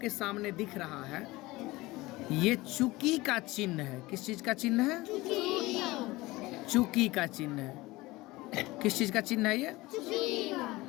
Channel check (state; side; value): quieter; right; 20.2 dB